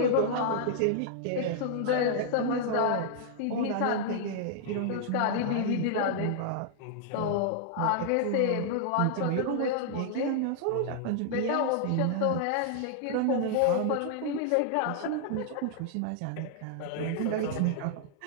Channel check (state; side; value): different; both; correlation -0.01